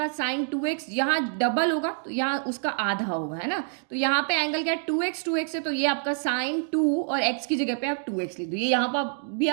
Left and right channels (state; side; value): silent; left; 60 dB below the other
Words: साइन 2x, यहाँ डबल होगा तो यहाँ उसका आधा होगा, है ना। तो यहाँ पे एंगल क्या है, 2x है। तो ये आपका साइन 2 और x की जगह पे आप 2x लिख दो। ये यहाँ पर भी